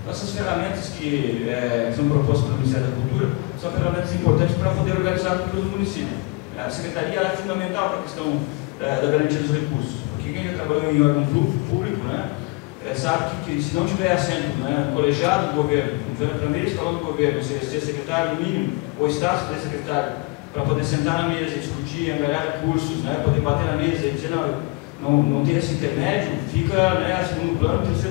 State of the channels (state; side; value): quieter; right; 25.4 dB